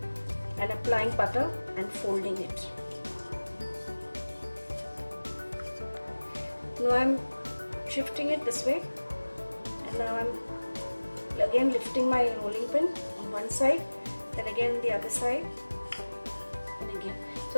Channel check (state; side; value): inverted; both; correlation -1.00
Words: and applying butter and folding it. Now I am shifting it this way, and now I am again lifting my rolling pin on one side, then again the other side, and again.